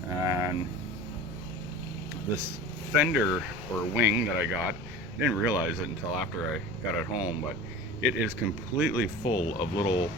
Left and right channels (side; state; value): left; noise; rumble, 14 dB below the sound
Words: And this fender or wing that I got, I didn't realize it until after I got it home, but it is completely full of little